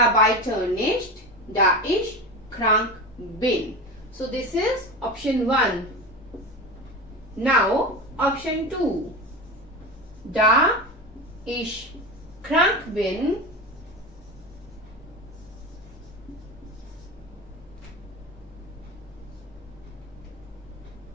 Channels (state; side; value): normal; both; correlation 0.25